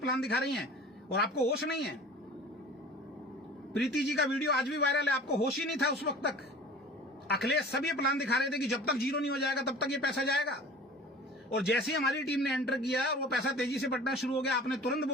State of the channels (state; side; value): normal; both; correlation 0.42